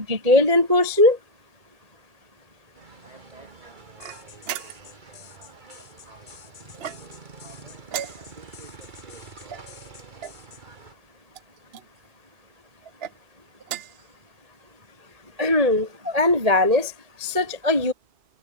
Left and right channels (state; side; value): late; left; 1.8 ms